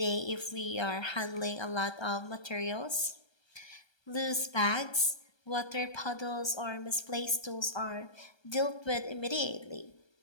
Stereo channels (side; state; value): right; late; 1.3 ms